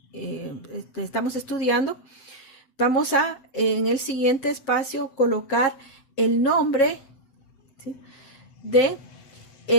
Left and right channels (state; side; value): late; right; 7.8 ms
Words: estamos estudiando. Vamos a en el siguiente espacio colocar el nombre, ¿sí?, de